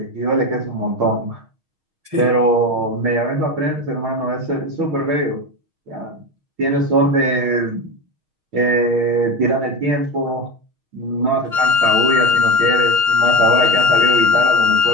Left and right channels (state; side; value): late; left; 6.4 ms